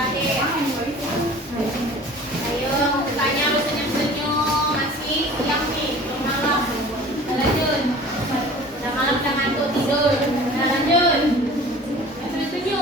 Ayo tanya lu senyum-senyum, masih siang nih, belum malam. Udah lanjut. Udah malam udah ngantuk tidur. Udah lanjut.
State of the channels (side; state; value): both; normal; correlation 0.44